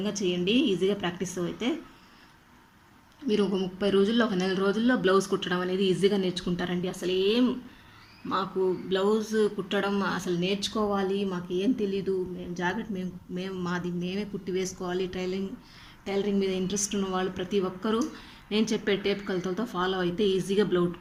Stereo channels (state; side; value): identical; both; correlation 1.00